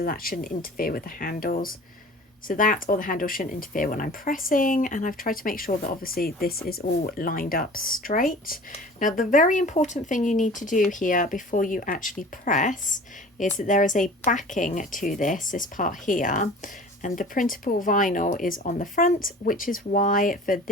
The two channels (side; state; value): both; normal; correlation 0.43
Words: that shouldn't interfere with the handles. So that or the handle shouldn't interfere when I'm pressing, and I've tried to make sure that obviously this is all lined up straight. Now the very important thing you need to do here before you actually press is that there is a backing to this part here, and the printable vinyl is on the front, which is why for